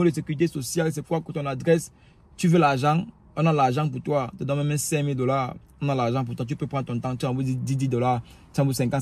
de sécurité sociale, c'est quoi ton adresse, tu veux l'argent, on a l'argent pour toi, te donne même $5000, on a l'argent pour toi, tu peux prendre ton temps, tu envoies $10, tu envoies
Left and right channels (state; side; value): identical; both; correlation 1.00